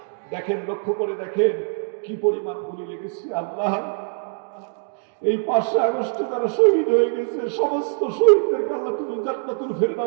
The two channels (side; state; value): left; silent; digital silence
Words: দেখেন, লক্ষ্য করে দেখেন কি পরিমাণ গুলি লেগেছে। আল্লাহ, এই 5 আগস্টে যারা শহীদ হয়ে গেছে, সমস্ত শহীদদেরকে আল্লাহ তুমি জান্নাতুল